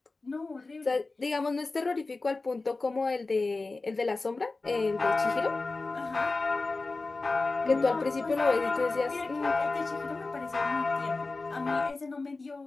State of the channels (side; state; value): right; quieter; 3.5 dB